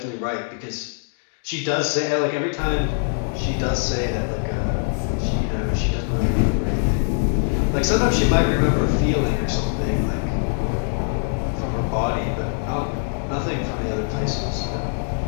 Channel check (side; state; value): right; silent; 64 dB below the other